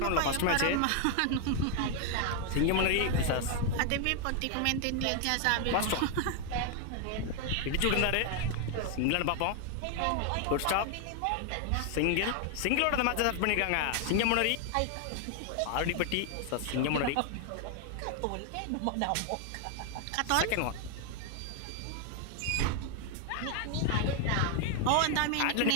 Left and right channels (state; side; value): different; both; correlation 0.00